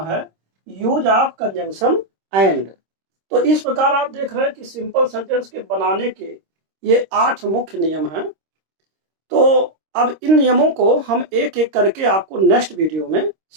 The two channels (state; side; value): late; left; 26 ms